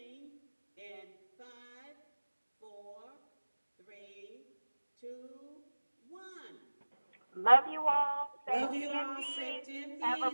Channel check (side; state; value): both; inverted; correlation -1.00